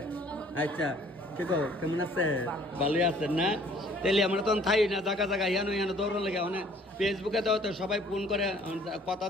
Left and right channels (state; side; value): normal; both; correlation 0.56